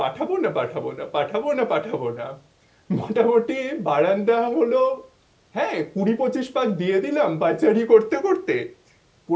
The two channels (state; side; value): identical; both; correlation 1.00